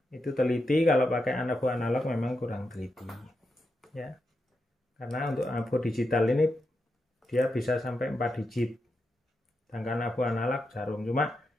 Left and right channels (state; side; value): normal; both; correlation 0.86